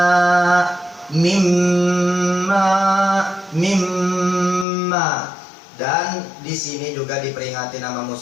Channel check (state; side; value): drops out; right; at 4.7 s